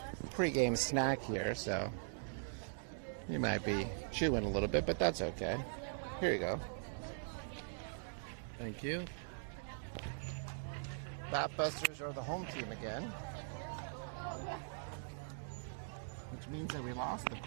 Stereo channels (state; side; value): silent; left; digital silence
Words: pre-game snack here, so you might be chewing a little bit, but that's okay. Here you go. Thank you. Batbusters are the home team again, which means that we lost the